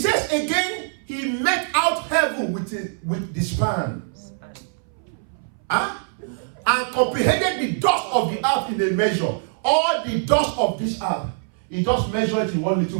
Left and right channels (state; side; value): silent; left; 61 dB below the other